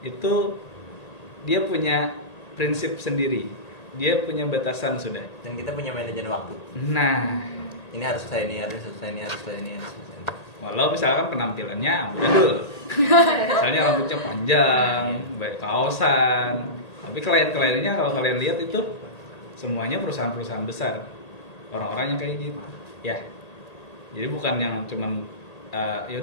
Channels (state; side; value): late; right; 1.8 ms